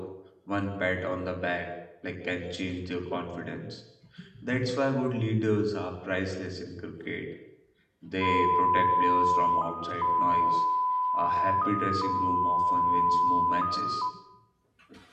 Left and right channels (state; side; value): identical; both; correlation 1.00